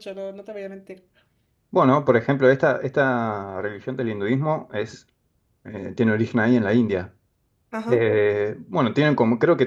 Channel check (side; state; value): both; identical; correlation 1.00